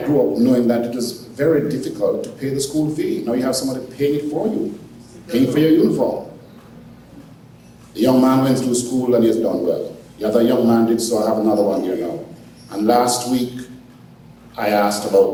up knowing that it was very difficult to pay the school fee. Now you have somebody paying it for you, paying for your uniform. The young man went through school and he has done well. The other young man did so. I have another one here now. And last week, I asked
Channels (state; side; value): identical; both; correlation 1.00